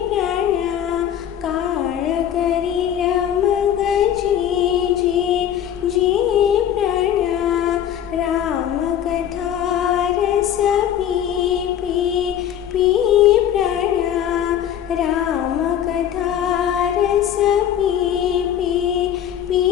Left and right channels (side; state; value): right; quieter; 10.1 dB